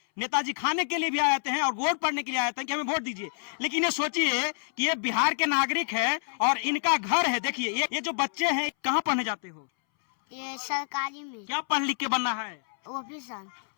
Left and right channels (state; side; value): silent; right; 59 dB below the other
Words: नेताजी खाने के लिए भी आ जाते हैं और वोट पड़ने के लिए आ जाते हैं कि हमें वोट दीजिए। लेकिन ये सोचिए कि ये बिहार के नागरिक है और इनका घर है। देखिए ये जो बच्चे हैं कहाँ पढ़ने जाते हो? ये सरकारी में। क्या पढ़ लिख के बनना है? ऑफिसर।